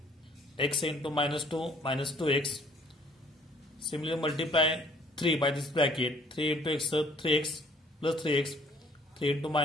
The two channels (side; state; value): both; normal; correlation 0.58